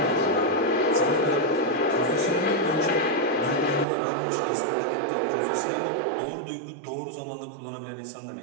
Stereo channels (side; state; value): left; drops out; at 3.9 s